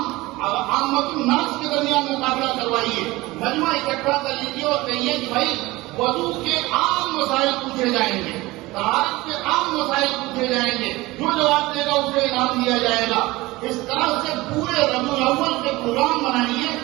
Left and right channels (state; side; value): quieter; left; 20.1 dB